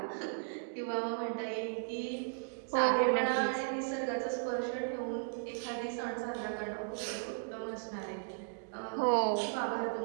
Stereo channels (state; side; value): silent; left; digital silence